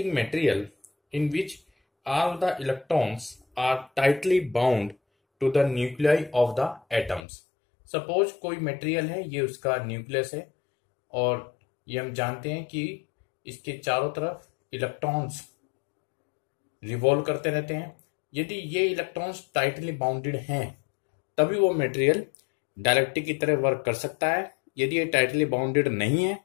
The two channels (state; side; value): drops out; right; at 7.2 s